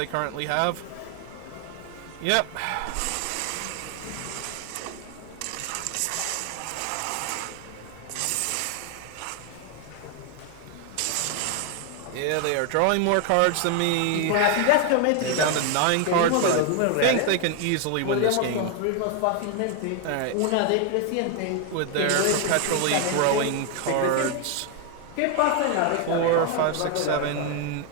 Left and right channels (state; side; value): different; both; correlation 0.00